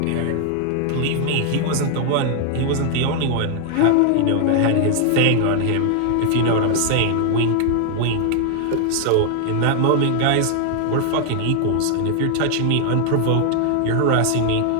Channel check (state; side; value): different; both; correlation 0.00